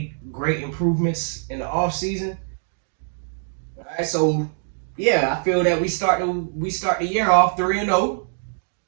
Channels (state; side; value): silent; left; 63 dB below the other